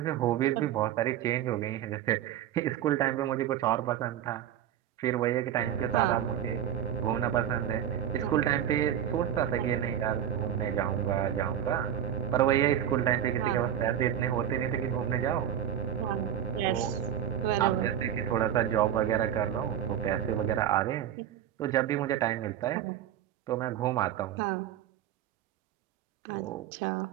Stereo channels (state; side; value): quieter; left; 10.2 dB